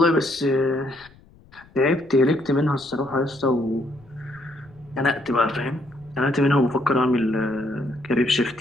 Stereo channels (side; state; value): left; noise; rumble, 27 dB below the sound